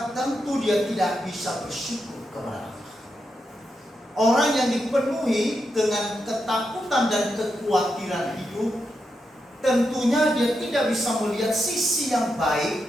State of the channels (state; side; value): normal; both; correlation 0.85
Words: tentu dia tidak bisa bersyukur kepada Allah. Orang yang dipenuhi dengan ketakutan dan kekhawatiran hidup, tentunya dia tidak bisa melihat sisi yang